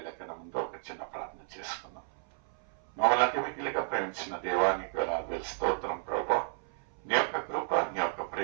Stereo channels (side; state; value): left; silent; 56 dB below the other